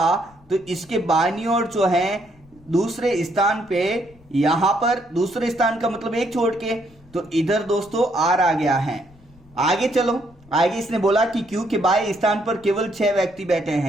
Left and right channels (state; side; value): noise; left; rumble, 27 dB below the sound